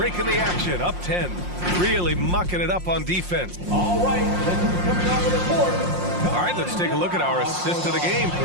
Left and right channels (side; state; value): left; late; 5.6 ms